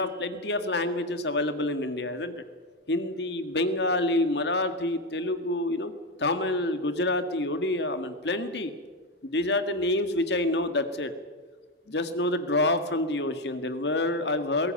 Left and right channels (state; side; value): normal; both; correlation 0.10